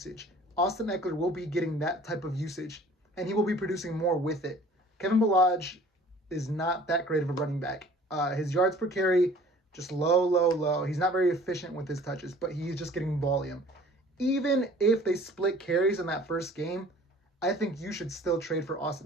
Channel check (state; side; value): normal; both; correlation 0.50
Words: Austin Ekeler will be getting that type of usage, and he will be producing more with it. Kevin Ballage is not that great of a running back. His yards per carry, just low. He's not very efficient with his touches, but he's just getting volume. Even if they split carries in that first game, I think you should still trade for